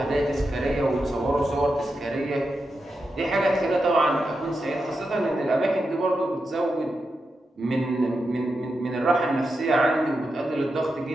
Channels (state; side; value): normal; both; correlation 0.88